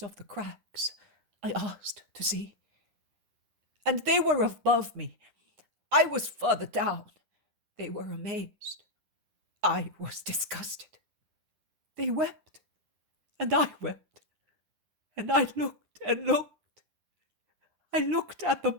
of the cracks, I asked to see. And they were above me. I was further down. They were amazed. I was disgusted. They wept, and I wept, and I looked and looked. I looked at the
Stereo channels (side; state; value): left; late; 10 ms